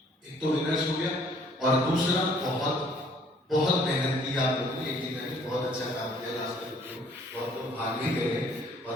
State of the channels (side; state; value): both; normal; correlation 0.60